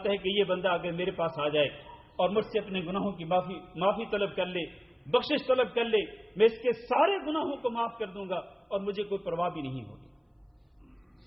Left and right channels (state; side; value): identical; both; correlation 1.00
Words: ہے کہ یہ بندہ اگر میرے پاس آ جائے اور مجھ سے اپنے گناہوں کی معافی طلب کر لے، بخشش طلب کر لے، میں اس کے سارے گناہوں کو معاف کر دوں گا اور مجھے کوئی پرواہ بھی نہیں ہوگی۔